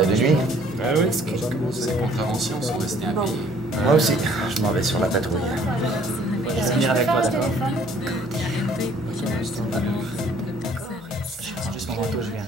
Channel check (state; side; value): normal; both; correlation 0.58